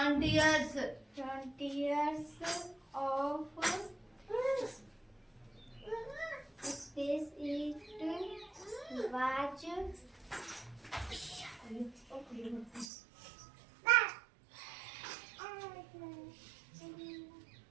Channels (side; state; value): left; drops out; at 12.9 s